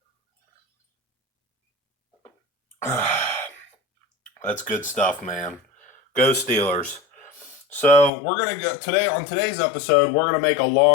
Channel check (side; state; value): right; drops out; at 8.1 s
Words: That's good stuff, man. Go Steelers. So we're gonna go today on today's episode. We're gonna make a